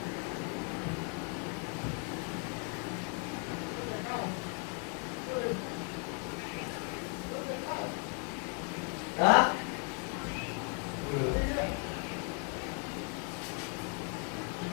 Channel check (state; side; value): quieter; right; 35.6 dB